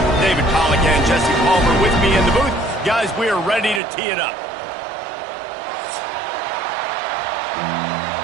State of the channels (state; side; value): drops out; left; at 3.8 s